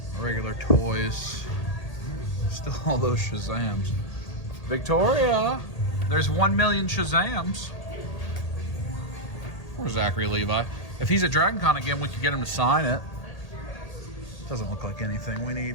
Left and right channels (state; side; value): late; right; 1.8 ms